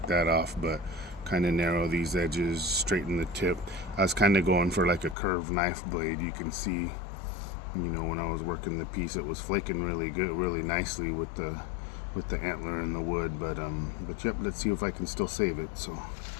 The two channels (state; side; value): drops out; right; at 5.2 s